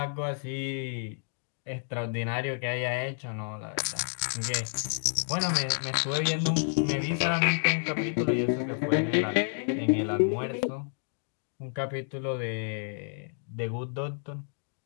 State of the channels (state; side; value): silent; right; digital silence